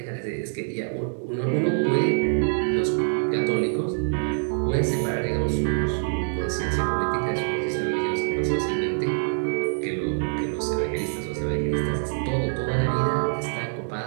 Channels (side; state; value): left; silent; digital silence